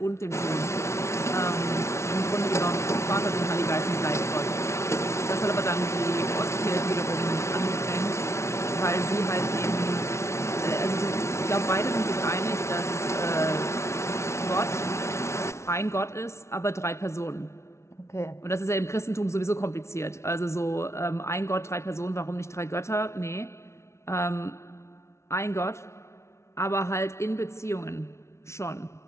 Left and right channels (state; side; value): late; right; 0.13 ms